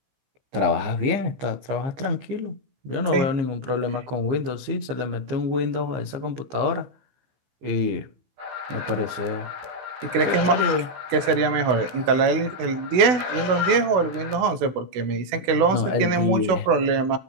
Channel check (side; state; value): left; late; 16 ms